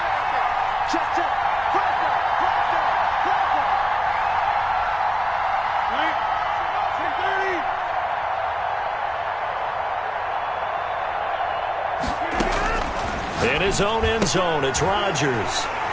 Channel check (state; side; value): identical; both; correlation 1.00